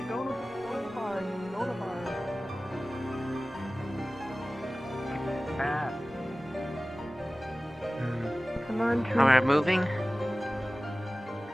go to the bar. Go to the bar. Come on, Oh, we're moving?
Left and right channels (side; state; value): both; normal; correlation 0.97